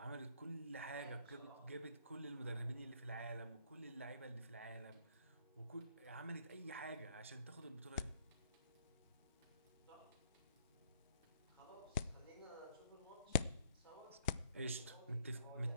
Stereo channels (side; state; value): both; inverted; correlation -0.66